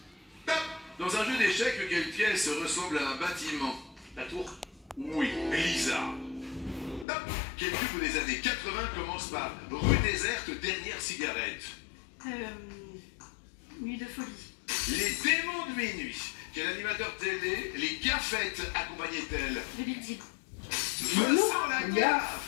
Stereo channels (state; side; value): drops out; right; at 7.1 s